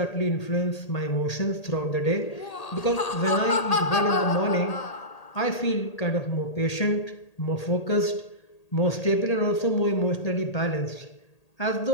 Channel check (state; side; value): late; right; 1.8 ms